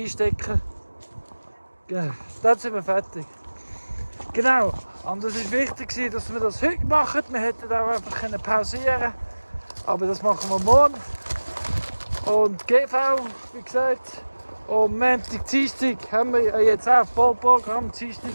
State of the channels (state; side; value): inverted; both; correlation -1.00